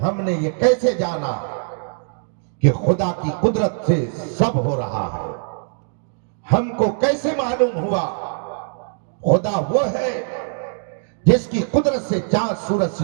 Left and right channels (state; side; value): silent; left; digital silence